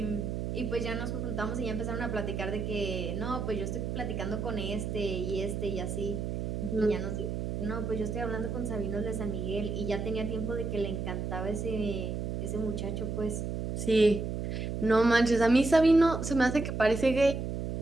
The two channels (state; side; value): noise; right; hum, 3 dB below the sound